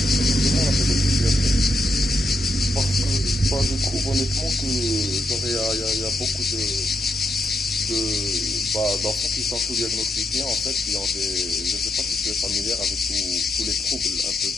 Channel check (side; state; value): both; normal; correlation 0.80